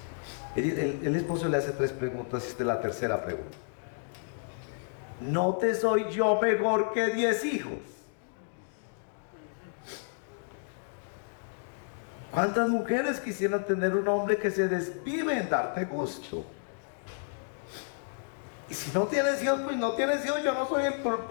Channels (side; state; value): right; silent; digital silence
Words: El esposo le hace 3 preguntas, esta es la tercera pregunta. ¿No te soy yo mejor que 10 hijos? ¿Cuántas mujeres quisieran tener un hombre que se desvive en darte gusto? Y si no tienes hijos, pues no tienes hijos, yo no soy el